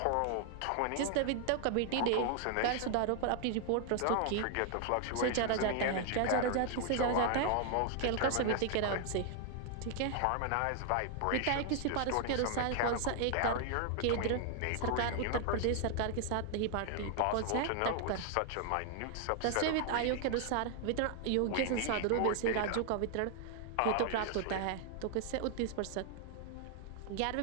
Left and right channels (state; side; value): different; both; correlation 0.00